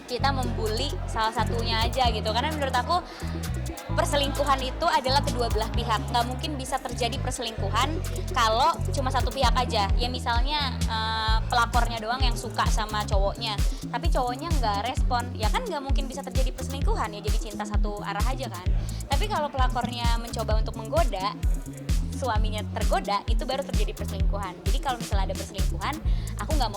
kita membuli salah satunya aja gitu. Karena menurut aku perselingkuhan itu adalah kedua belah pihak. Nggak mungkin bisa terjadi perselingkuhan kalau cuma satu pihak aja. Ya misalnya pelakornya doang yang suka sama cowoknya, tapi cowoknya nggak respon, ya kan nggak mungkin bisa terjadi perselingkuhan, ya jadi cinta satu arah aja kan. Tapi kalau pelakornya mencoba untuk menggoda, suaminya tergoda, itu baru terjadi perselingkuhan. Jadi kalau misalnya ada perselingkuhan, aku nggak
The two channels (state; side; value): identical; both; correlation 1.00